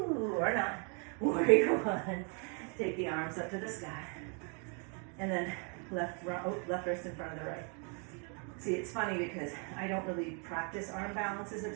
or not. Warrior one. Take the arms up to the sky. And then left wrist in front of the right. See, it's funny because I don't really practice arm balances a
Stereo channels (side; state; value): left; quieter; 38.0 dB